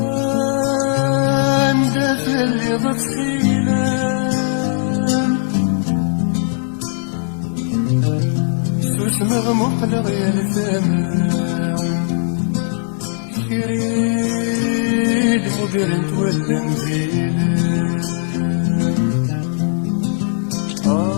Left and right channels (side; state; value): right; silent; digital silence